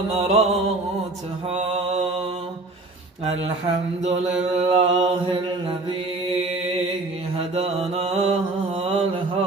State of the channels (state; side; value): quieter; left; 3.1 dB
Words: الحمد لله الذي هدانا